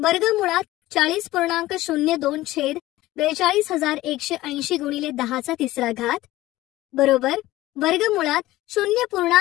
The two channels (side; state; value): right; quieter; 16.8 dB